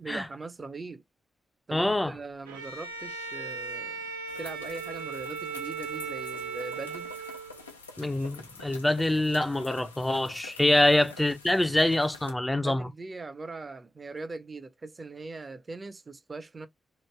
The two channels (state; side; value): normal; both; correlation 0.91